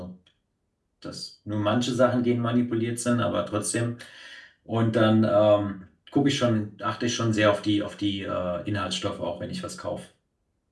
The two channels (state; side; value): identical; both; correlation 1.00